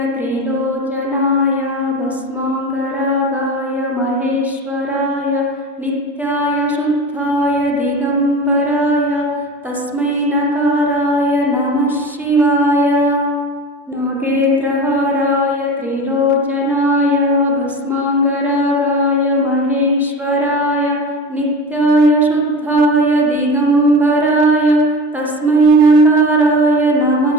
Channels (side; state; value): both; normal; correlation 0.31